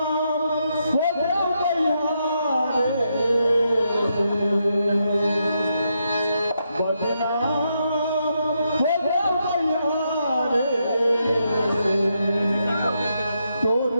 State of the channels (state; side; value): inverted; both; correlation -0.81